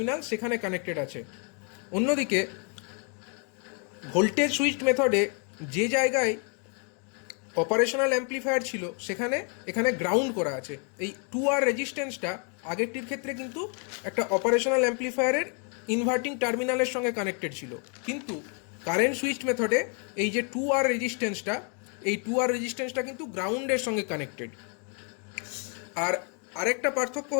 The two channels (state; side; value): quieter; right; 38.8 dB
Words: সেখানে কানেক্টেড আছে। অন্যদিকে ভোল্টেজ সুইচ মেথডে যে জায়গায় অপারেশনাল অ্যাম্প্লিফায়ার ছিল এখানে গ্রাউন্ড করা আছে। এই 2R রেজিস্ট্যান্সটা আগেরটির ক্ষেত্রে কিন্তু একটা অপারেশনাল অ্যাম্প্লিফায়ারের ইনভার্টিং টার্মিনালের সঙ্গে কানেক্টেড ছিল, কিন্তু কারেন্ট সুইচ মেথডে এই যে 2R রেজিস্ট্যান্সটা কিন্তু গ্রাউন্ডের সঙ্গে কানেক্টেড। আর আরেকটা পার্থক্য